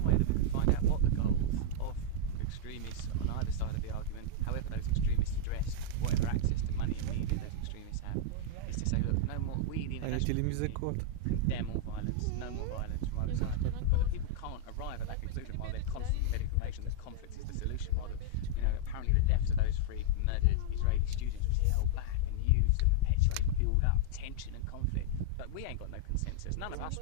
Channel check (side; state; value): both; different; correlation -0.01